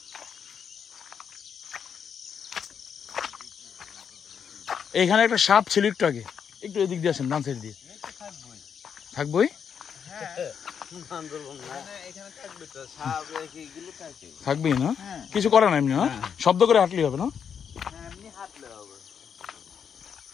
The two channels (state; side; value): quieter; right; 7.3 dB